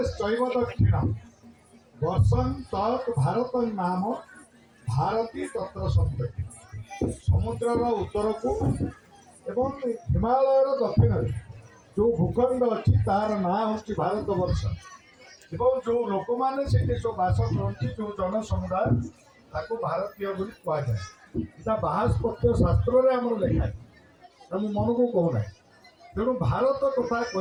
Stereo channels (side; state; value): both; identical; correlation 1.00